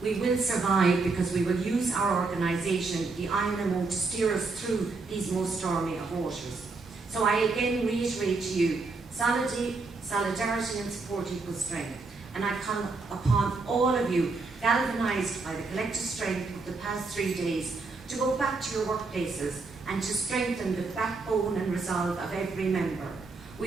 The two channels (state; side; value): quieter; left; 3.9 dB